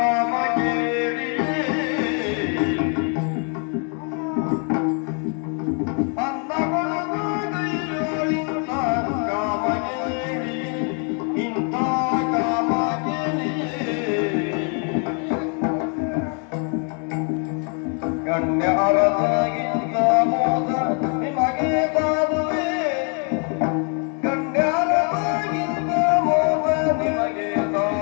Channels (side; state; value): right; quieter; 39.9 dB